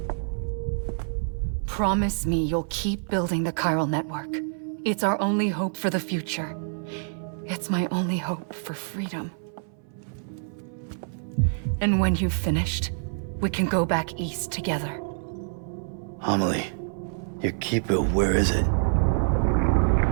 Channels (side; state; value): left; silent; 58 dB below the other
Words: Promise me you'll keep building the Chiral Network. It's our only hope for the future. It's my only hope for freedom. And when you've finished, we can go back east together. Amelie, your Kipu, where is it?